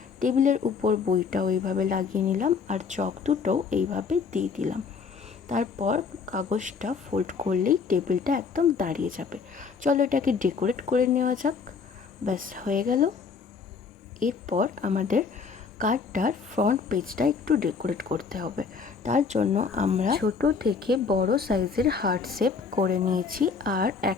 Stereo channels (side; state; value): right; quieter; 5.4 dB